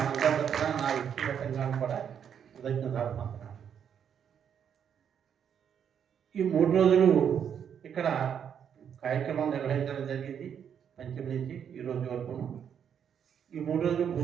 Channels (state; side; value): quieter; left; 8.2 dB